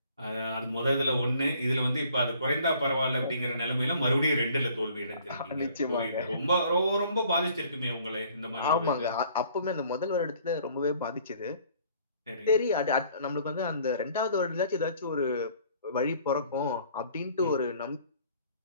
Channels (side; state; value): both; inverted; correlation -0.57